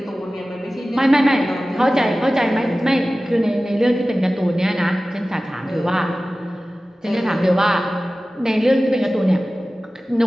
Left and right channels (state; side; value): normal; both; correlation 0.96